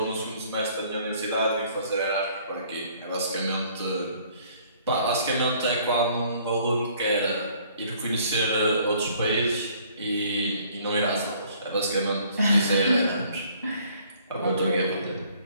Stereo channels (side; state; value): both; inverted; correlation -0.59